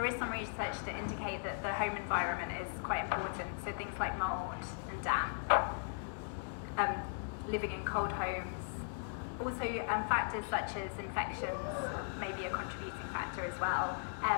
is some research to indicate that the home environment is quite important. So things like mold and damp, living in cold homes. Also, factors such as infections may be a contributing factor as well,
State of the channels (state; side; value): silent; right; digital silence